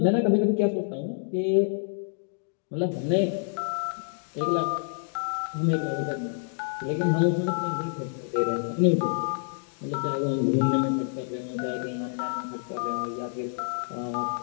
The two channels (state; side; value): silent; right; digital silence